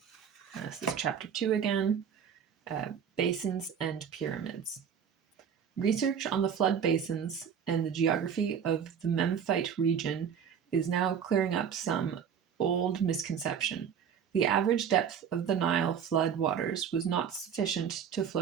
This is chapter 2 again, Basins and Pyramids. Research on the flood basins and the geography of the Memphite region is now clearing up some old misconception. The average depth of the Nile flood waters was not sufficient to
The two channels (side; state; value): left; quieter; 7.8 dB